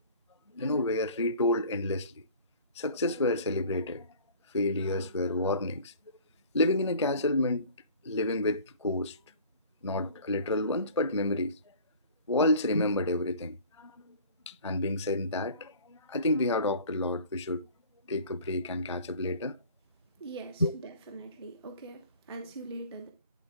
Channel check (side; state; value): both; inverted; correlation -0.46